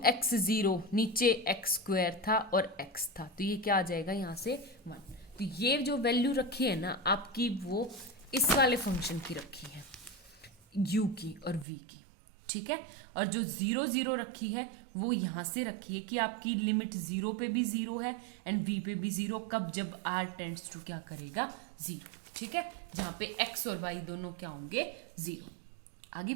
x 0 नीचे एक्स स्क्वायर था और x था, तो ये क्या आ जाएगा यहाँ से 1। तो ये जो वैल्यू रखी है ना आपकी वो इस वाले फंक्शन की रखी है u की और v की। ठीक है, और जो 0 0 रखी है वो यहाँ से रखी है कि आपकी लिमिट 0 पे भी 0 है एंड v पे भी 0, कब? जब r टेंड्स टू क्या करेगा 0। ठीक है, जहाँ पे x और y दोनों क्या होंगे 0। आगे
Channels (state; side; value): drops out; left; at 11.7 s